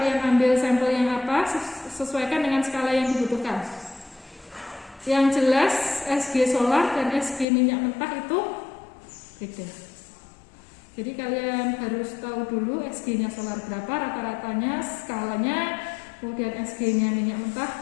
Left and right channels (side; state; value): right; drops out; at 7.5 s